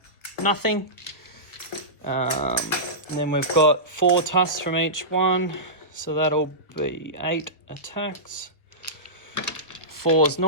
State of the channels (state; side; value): late; right; 1.4 ms